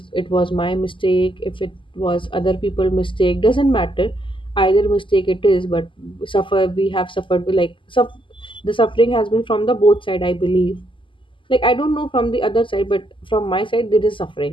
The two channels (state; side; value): late; right; 0.25 ms